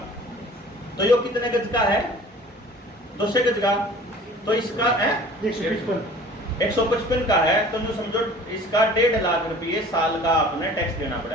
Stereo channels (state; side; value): normal; both; correlation 0.46